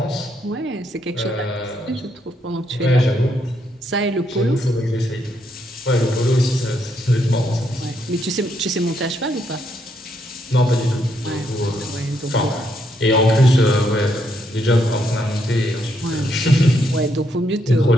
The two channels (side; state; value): both; normal; correlation 0.76